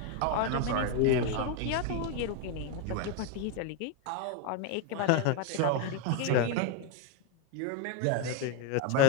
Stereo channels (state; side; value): different; both; correlation 0.01